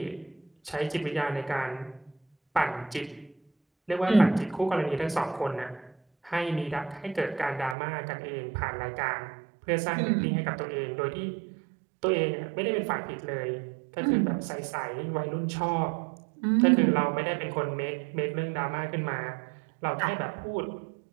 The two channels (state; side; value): drops out; left; at 7.8 s